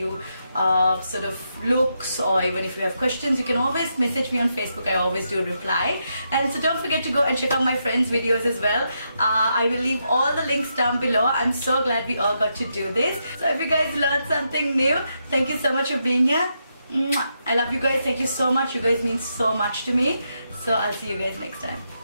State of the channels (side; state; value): both; inverted; correlation -0.82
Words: sort of looks, or even if you have questions, you can always message me on Facebook. I always do reply. And so don't forget to go and check out my friends' videos as well. I will leave all the links down below. I'm so glad we all got to do this. So if you guys learned something new, thank you so much for being here. I love you guys. Thank you so much. You guys mean so much to me. So I'll see you guys next time.